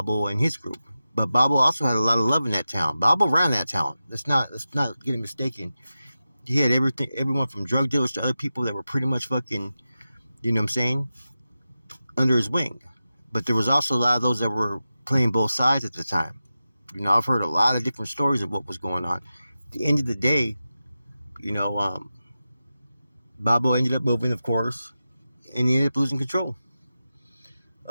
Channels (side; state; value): both; inverted; correlation -0.93